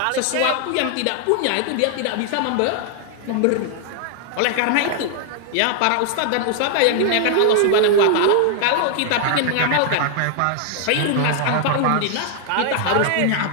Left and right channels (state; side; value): different; both; correlation 0.00